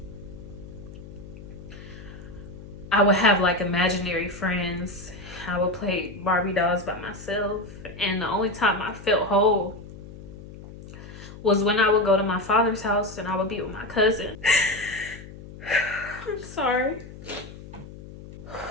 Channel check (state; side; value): noise; left; hum, 15 dB below the sound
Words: I would have like imaginary friends. I would play Barbie dolls by myself, and the only time I felt whole was when I would go to my father's house and I would be with my cousin. I'm sorry.